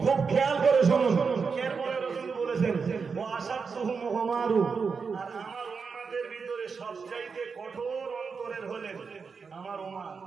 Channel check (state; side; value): quieter; left; 5.3 dB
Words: খুব খেয়াল করে শুনুন। এরপরে রাসূল বলেছেন ও আসাদুহুম উমারু, আর আমার উম্মতের ভিতরে সবচাইতে কঠোর অন্তরের হলেন আমার উমর।